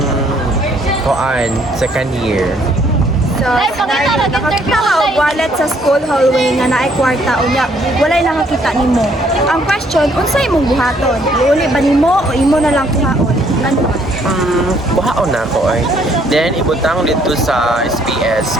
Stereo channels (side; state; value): both; normal; correlation 0.65